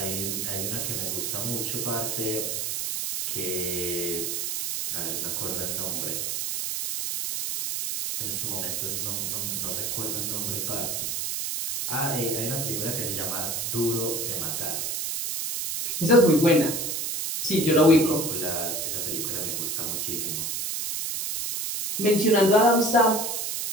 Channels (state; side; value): noise; right; hiss, 2 dB below the sound